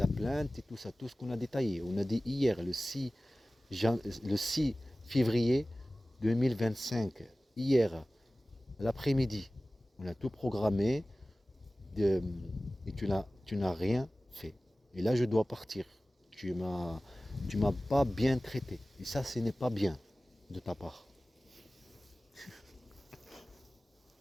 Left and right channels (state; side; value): normal; both; correlation 0.97